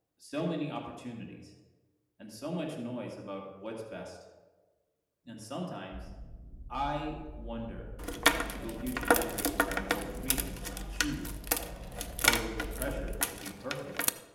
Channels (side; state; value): both; identical; correlation 1.00